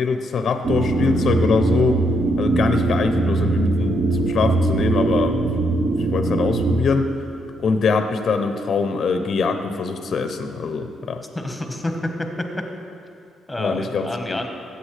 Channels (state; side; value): normal; both; correlation 0.76